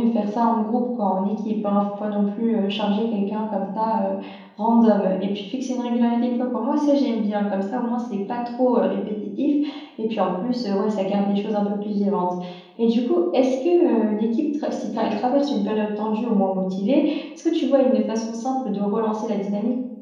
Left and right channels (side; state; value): both; identical; correlation 1.00